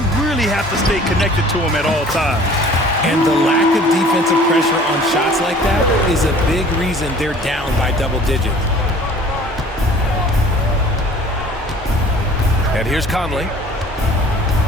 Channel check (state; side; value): normal; both; correlation 0.50